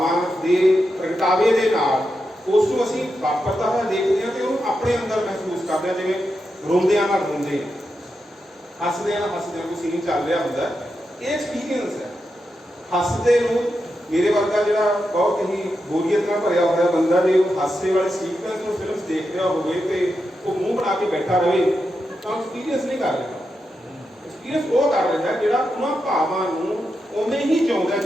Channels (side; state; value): both; normal; correlation 0.87